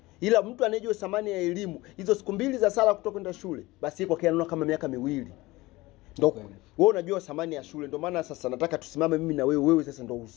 Ila mtu anayejua thamani ya elimu, hizo siku mbili za Sara kutoka kwenda shule, basi yeye kwa anaona kama miaka 2. Ndio wewe unajua thamani ya shule. Ndio maana sasa nataka tusimame mimi na wewe sasa ndio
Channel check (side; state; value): right; quieter; 20.2 dB